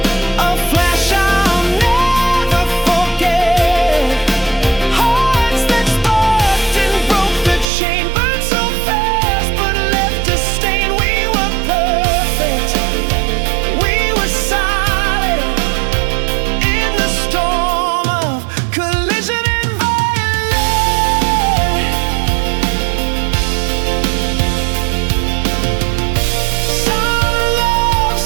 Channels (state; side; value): drops out; left; at 7.7 s